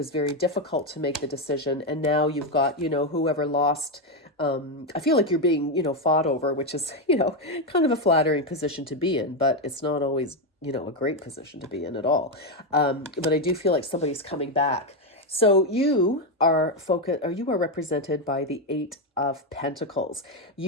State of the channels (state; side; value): normal; both; correlation 0.07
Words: very difficult to make the decision. And now you've got, whoever lost, I feel like you're being, fought over, which is, kind of a flattering position to be in, but it's not always, a great position to be in at all. But I do feel like somebody's coming back. So you are represented by the Eight of Pentacles.